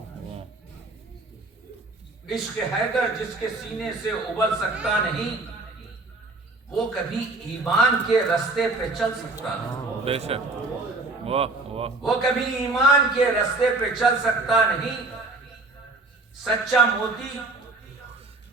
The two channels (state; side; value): quieter; left; 3.2 dB